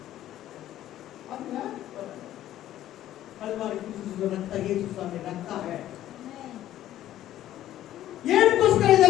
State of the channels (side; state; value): right; quieter; 13.0 dB